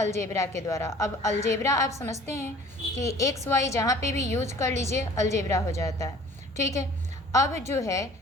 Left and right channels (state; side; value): normal; both; correlation 0.49